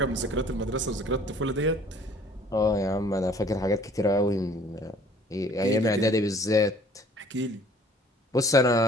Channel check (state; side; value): normal; both; correlation 0.54